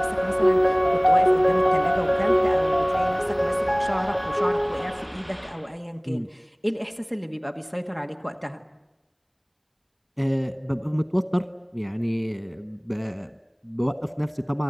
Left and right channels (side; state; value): both; identical; correlation 1.00